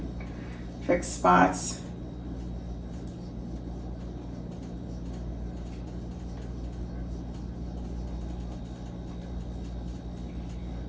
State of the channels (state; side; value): identical; both; correlation 1.00